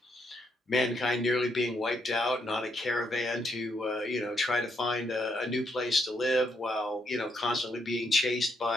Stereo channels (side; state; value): both; normal; correlation 0.76